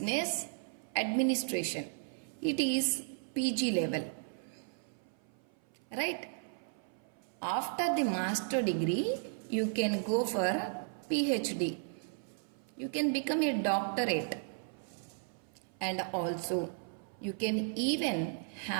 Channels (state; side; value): silent; left; 54 dB below the other